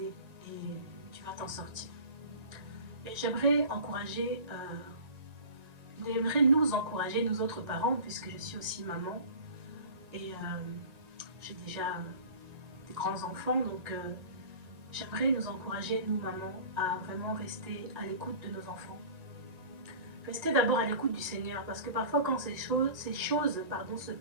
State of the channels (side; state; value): left; late; 1.9 ms